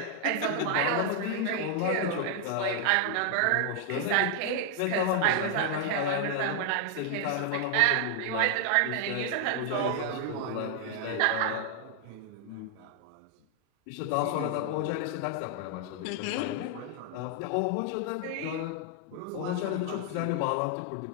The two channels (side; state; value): both; different; correlation 0.00